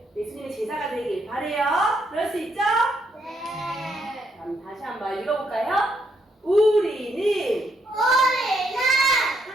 제자가 되길 바래요. 그럴 수 있죠? 네. 그럼 다시 한번 읽어볼까요? 우리는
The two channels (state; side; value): normal; both; correlation 0.75